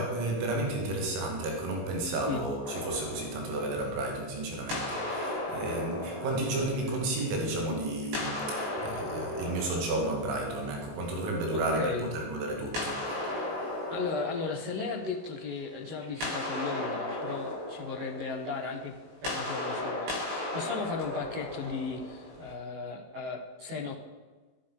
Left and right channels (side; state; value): left; late; 19 ms